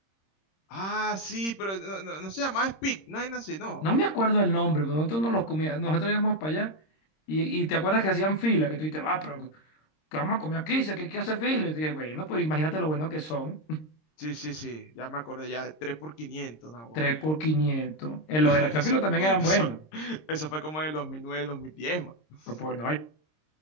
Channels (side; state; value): right; late; 26 ms